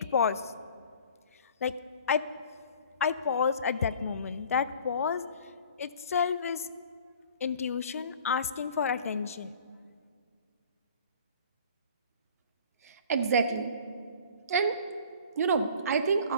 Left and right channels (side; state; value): both; inverted; correlation -0.48